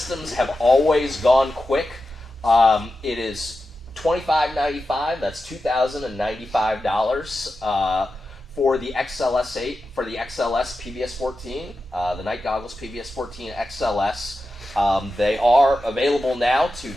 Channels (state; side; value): normal; both; correlation 0.91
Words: have always gone quick. It is $25.95. That's $2,095 for the XLS8 for the XLS PVS-14, the Night Goggles PVS-14 XLS. They are available now to